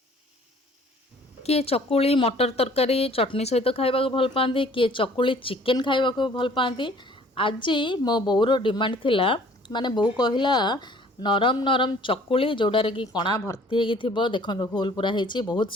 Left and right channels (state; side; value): normal; both; correlation 0.54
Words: किए चकुली मटर तरकारी चटनी सहित खाइबा भल पाती किए चकुली चिकेन खाइबा भल पाती। आज मो बोर डिमांड थिला माने बो कहला नरम नरम चकुली जोड़ारे कि कणा भर्ती हो देखो होल पूरा होती बहुत